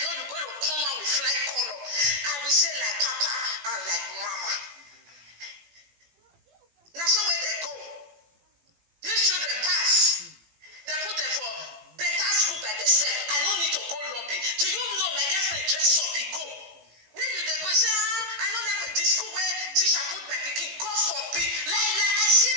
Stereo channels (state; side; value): late; left; 18 ms